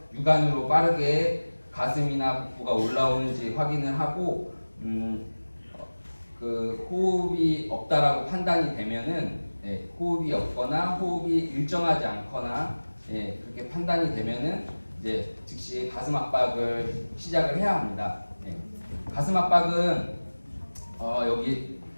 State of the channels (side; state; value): both; inverted; correlation -1.00